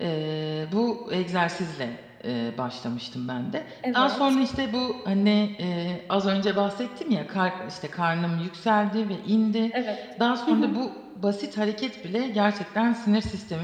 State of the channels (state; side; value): identical; both; correlation 1.00